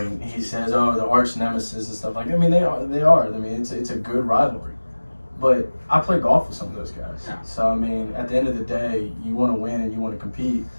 he says, "Oh, the arch nemesis" and stuff like that. I mean, they are. I mean, it's a good rivalry. But I play golf with some of those guys. Yeah. So, I mean, at the end of the day, you want to win and you want to compete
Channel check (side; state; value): both; inverted; correlation -1.00